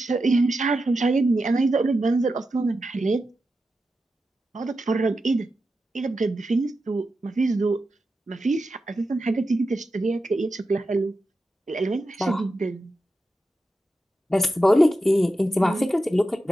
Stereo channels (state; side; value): normal; both; correlation 0.90